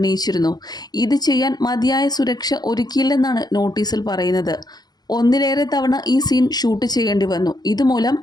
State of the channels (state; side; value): late; right; 0.19 ms